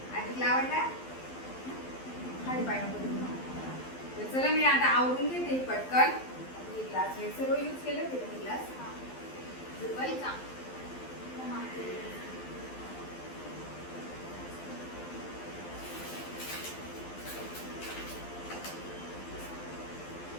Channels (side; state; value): right; late; 12 ms